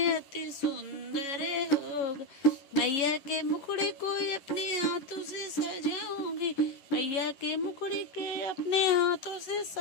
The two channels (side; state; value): right; late; 11 ms